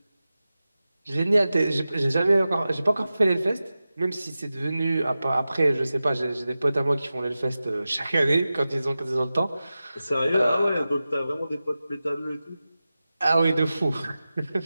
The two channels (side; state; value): both; inverted; correlation -0.95